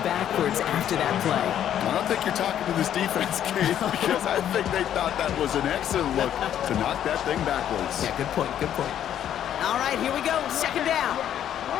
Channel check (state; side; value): quieter; right; 10.4 dB